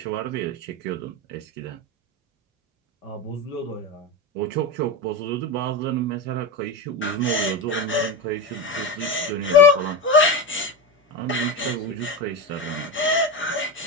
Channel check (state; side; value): normal; both; correlation 0.19